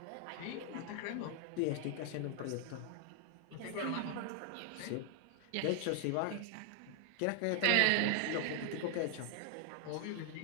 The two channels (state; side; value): different; both; correlation 0.00